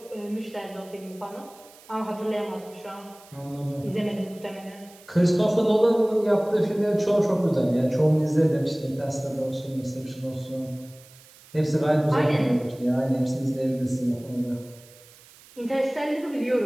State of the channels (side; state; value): right; noise; hiss, 24 dB below the sound